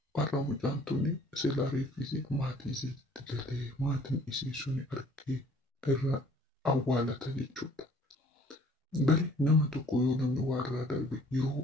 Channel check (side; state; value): both; normal; correlation 0.56